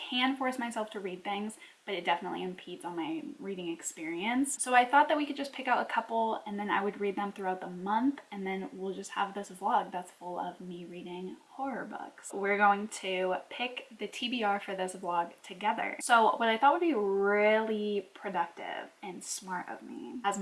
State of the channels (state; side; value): identical; both; correlation 1.00